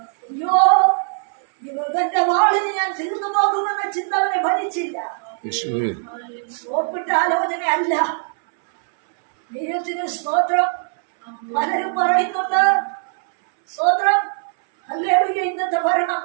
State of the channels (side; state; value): left; silent; 65 dB below the other